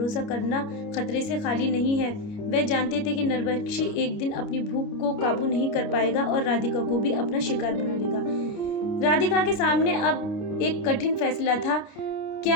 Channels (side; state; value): right; late; 29 ms